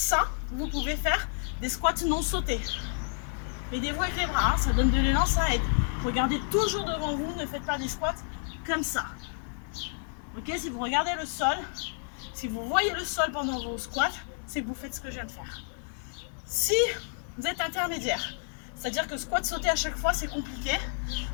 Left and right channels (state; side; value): silent; right; 58 dB below the other